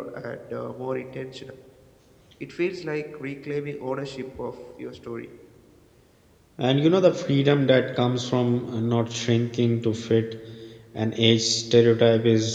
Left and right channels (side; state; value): both; identical; correlation 1.00